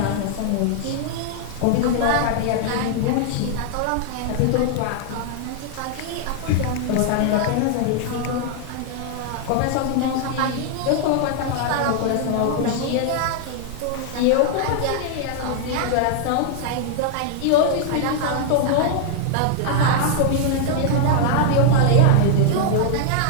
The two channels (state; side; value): different; both; correlation 0.00